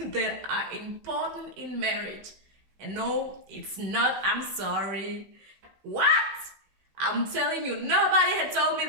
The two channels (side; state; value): left; late; 16 ms